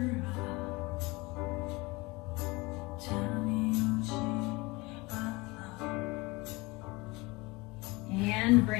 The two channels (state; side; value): quieter; right; 23.8 dB